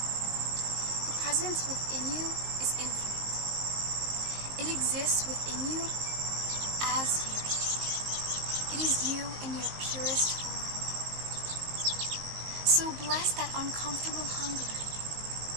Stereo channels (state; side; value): late; left; 19 ms